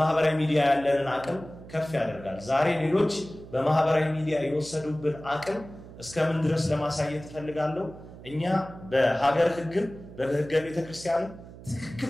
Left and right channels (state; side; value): noise; right; hum, 16 dB below the sound